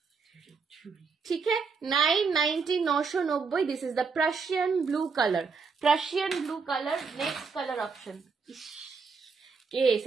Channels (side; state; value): left; quieter; 5.1 dB